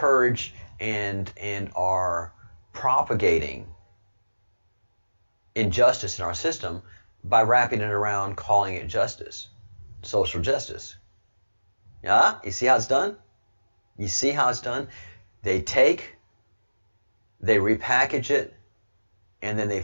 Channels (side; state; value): both; inverted; correlation -1.00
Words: and are propagating injustice in our system by wrapping it around, calling it justice, social justice. Yeah, you see how it's done? You see how it's done? They repackage it, and then they